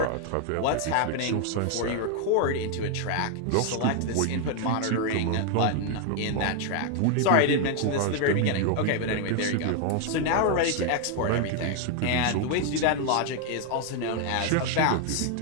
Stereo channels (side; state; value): both; different; correlation 0.00